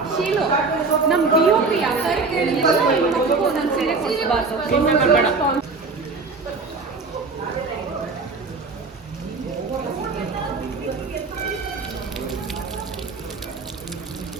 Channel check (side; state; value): left; quieter; 4.1 dB